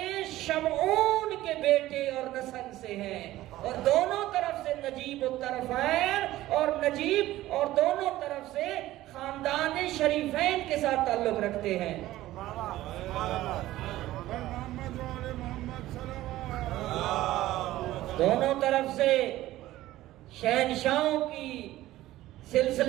شمعون کے بیٹے اور نسل سے ہیں، اور دونوں طرف سے نجیب الطرفین اور نجیب، اور دونوں طرف سے خاندان شریفین کے ساتھ تعلق رکھتے ہیں۔ دونوں طرف سے شہنشاہوں کی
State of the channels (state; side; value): quieter; left; 15.6 dB